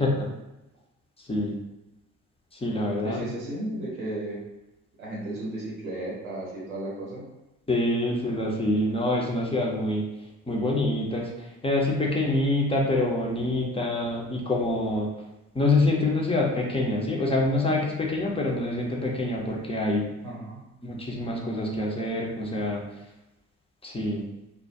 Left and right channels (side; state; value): both; normal; correlation 0.48